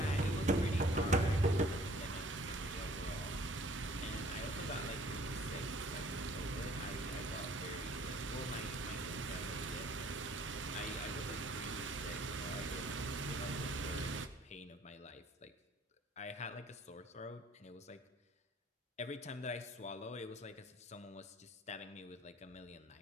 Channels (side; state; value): both; normal; correlation 0.56